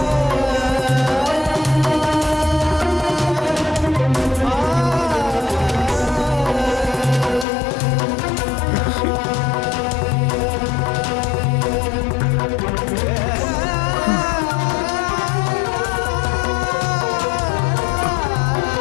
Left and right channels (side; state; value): right; drops out; at 7.5 s